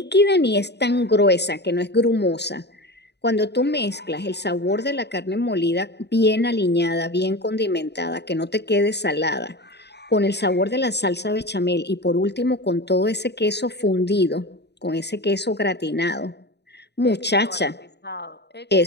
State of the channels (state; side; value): late; right; 0.49 ms